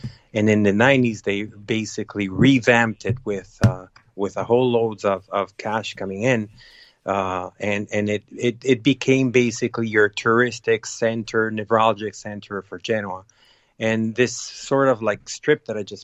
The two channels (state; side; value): identical; both; correlation 1.00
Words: And in the 90s, they basically revamped it with a whole loads of cash coming in. And it became basically your touristic center, neurologic center for Genoa. And this sort of like strip that I